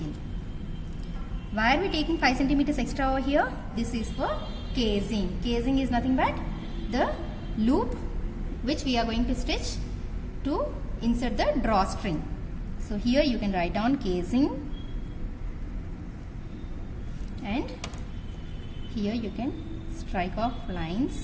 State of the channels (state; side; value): identical; both; correlation 1.00